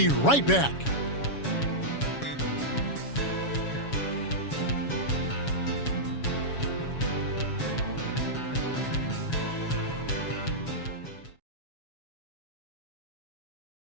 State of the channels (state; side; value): late; right; 7.2 ms